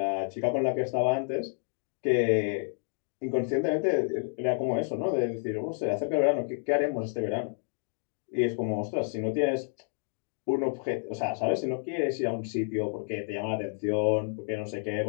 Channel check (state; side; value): silent; right; digital silence